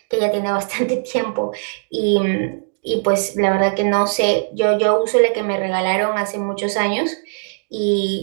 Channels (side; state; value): left; silent; digital silence